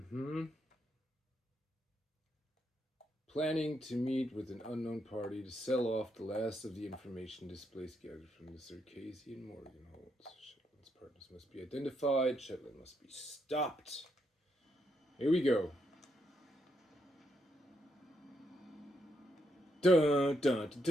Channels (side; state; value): both; normal; correlation 0.79